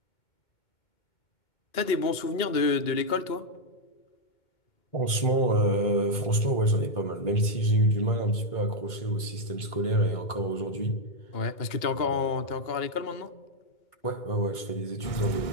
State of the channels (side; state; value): right; late; 2.2 ms